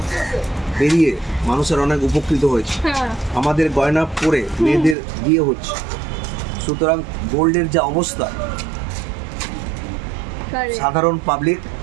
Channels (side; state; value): left; drops out; at 5.0 s